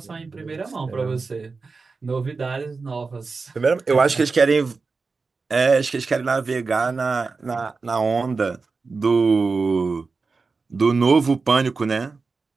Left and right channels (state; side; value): quieter; left; 4.3 dB